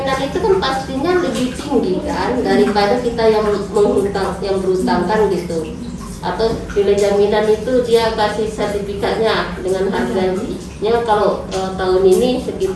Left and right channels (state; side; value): identical; both; correlation 1.00